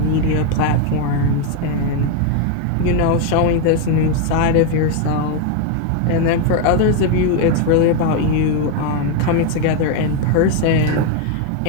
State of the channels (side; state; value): both; different; correlation 0.01